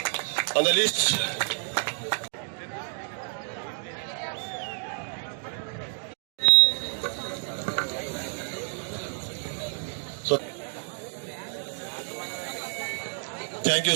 on the list. So, thank you,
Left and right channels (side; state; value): left; silent; 59 dB below the other